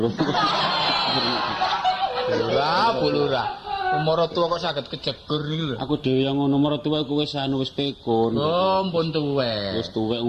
Lurah. Umur tua kok saged kejegur iki lho. Aku dhewe yang ngono umur tuwa iku wis pekun. Oh, ampun tuwek. Wis tuwek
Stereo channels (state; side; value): identical; both; correlation 1.00